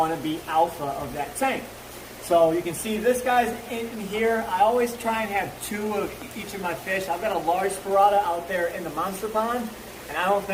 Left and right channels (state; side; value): identical; both; correlation 1.00